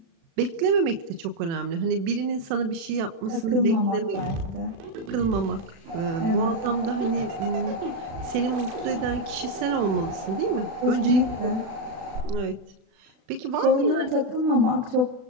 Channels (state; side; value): late; left; 36 ms